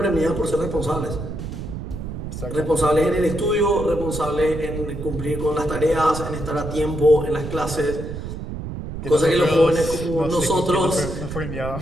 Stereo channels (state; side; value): noise; right; rumble, 7 dB below the sound